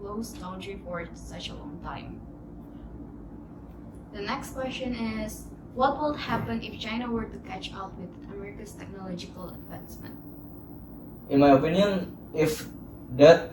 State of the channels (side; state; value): both; identical; correlation 1.00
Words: closed country for such a long time. The next question is, what will happen if China were to catch up with America's technological advancement? In my opinion, if that